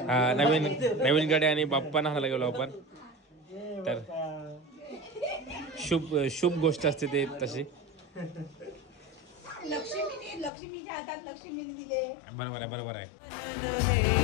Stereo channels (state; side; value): drops out; right; at 10.5 s